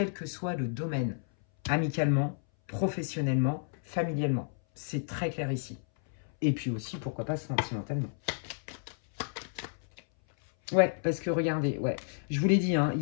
que soit le domaine, amicalement, professionnellement, familialement. C'est très clair ici. Et puis aussi, pourquoi pas sentimentalement. Ouais, parce que regardez, ouais, je vous l'ai dit, hein, il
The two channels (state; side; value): silent; right; 57 dB below the other